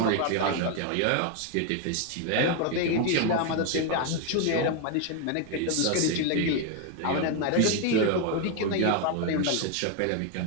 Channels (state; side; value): different; both; correlation 0.01